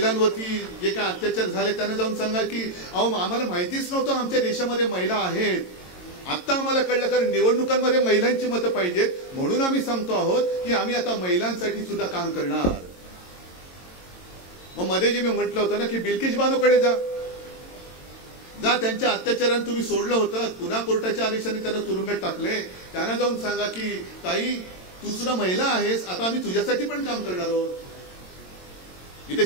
जे काय अत्याचार झाले त्यांना जाऊन सांगा की अहो आम्हाला माहितीच नव्हतं आमच्या देशामध्ये महिला आहेत, आता आम्हाला कळलं, कारण निवडणुकांमध्ये महिलांची मतं पाहिजेत म्हणून आम्ही सांगतो आहोत की आम्ही आता महिलांसाठी सुद्धा काम करणार। मग मध्ये जे मी म्हटलं होतं ना की बिल्किस बानोकडे जा, त्यांच्या अत्याचाराने तुम्ही सोडलं होतं, पुन्हा कोर्टाच्या आदेशाने त्यांना तुरुंगात टाकले, त्यांना जाऊन सांगा की ताई तू सुद्धा महिला आहेस, आता आम्ही तुझ्यासाठी पण काम करणार आहोत। इथे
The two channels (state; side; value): late; right; 22 ms